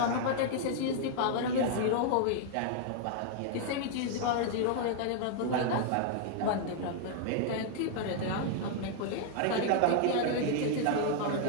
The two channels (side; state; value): both; different; correlation 0.00